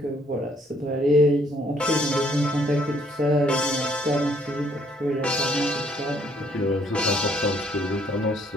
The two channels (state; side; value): normal; both; correlation 0.65